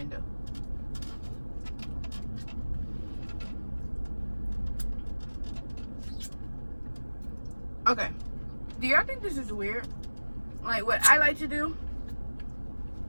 of. Okay. Do y'all think this is weird? Like, what I like to do?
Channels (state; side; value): inverted; both; correlation -1.00